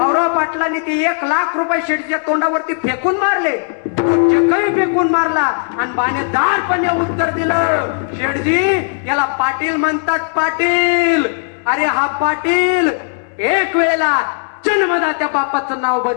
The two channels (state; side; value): silent; right; 69 dB below the other